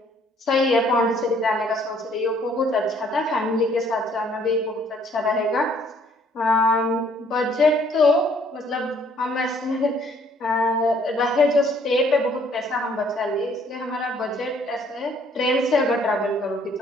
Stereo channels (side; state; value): both; normal; correlation 0.62